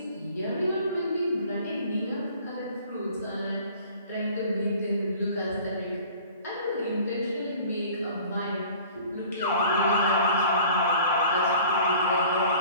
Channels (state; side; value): inverted; both; correlation -0.48